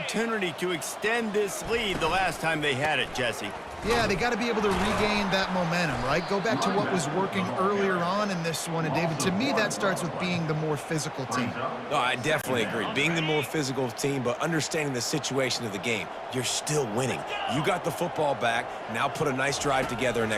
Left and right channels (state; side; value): identical; both; correlation 1.00